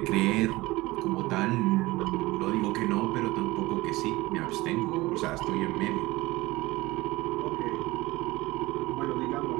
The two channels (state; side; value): quieter; left; 20.2 dB